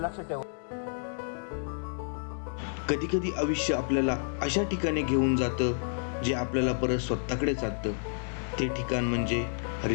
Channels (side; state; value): right; silent; digital silence